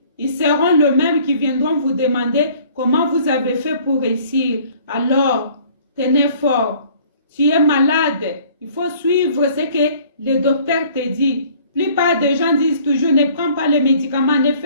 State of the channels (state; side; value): inverted; both; correlation -0.55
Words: ils seront les mêmes qui viendront vous demander comment vous avez fait pour réussir. Alors, tenez fort. Tu es malade, il faut suivre ce que le docteur te dit. La plupart des gens disent toujours, ne prends pas les médicaments, ne